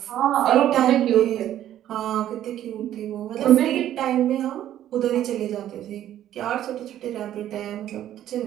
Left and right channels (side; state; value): left; quieter; 11.9 dB